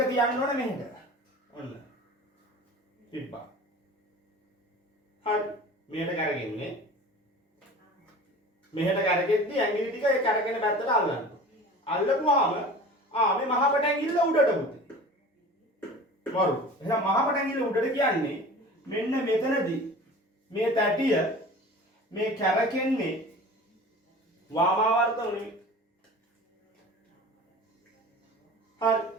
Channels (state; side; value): normal; both; correlation 0.39